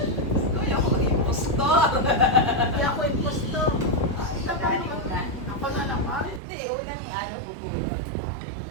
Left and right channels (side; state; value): left; drops out; at 6.4 s